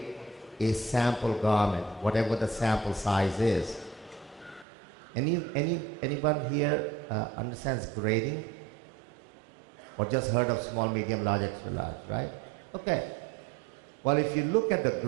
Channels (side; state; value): left; drops out; at 4.7 s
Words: a sample garment, whatever the sample size is. Anyone here understands grading? Or just heard of small, medium, large, extra large, right? Okay. Well, if you look at the